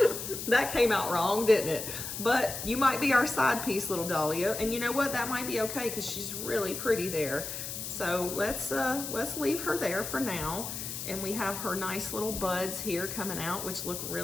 That came out wrong, didn't it? But you might be our side piece, little dahlia, and you know what? That might be okay because she's really pretty there. So let's leave her there for now. And we have her nice little buds here coming out, which look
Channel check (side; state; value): left; noise; hiss, 6 dB below the sound